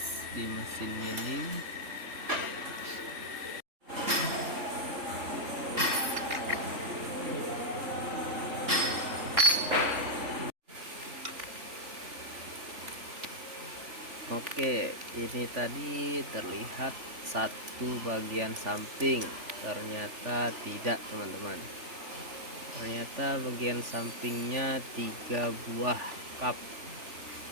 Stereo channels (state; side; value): late; left; 3.4 ms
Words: di mesin milling. Oke, ini tadi terlihat satu bagian samping, ternyata tidak teman-teman. Ternyata bagian sampingnya 3 buah cup.